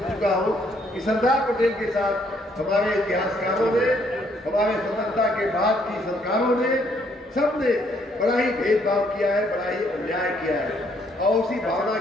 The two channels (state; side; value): normal; both; correlation 0.68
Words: चुका हूँ कि सरदार पटेल के साथ हमारे इतिहासकारों ने, हमारे स्वतंत्रता के बाद की सरकारों ने, सबने बड़ा ही भेदभाव किया है, बड़ा ही अन्याय किया है, और उसी भावना